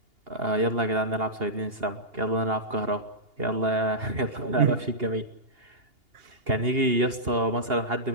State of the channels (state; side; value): late; left; 2.8 ms